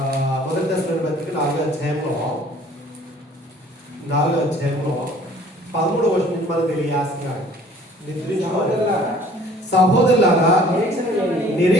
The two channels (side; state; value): both; normal; correlation 0.53